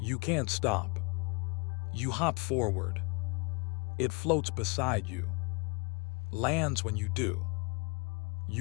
you can't stop. You hop forward. It floats beside you. Lands when you do.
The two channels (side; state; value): right; quieter; 31.1 dB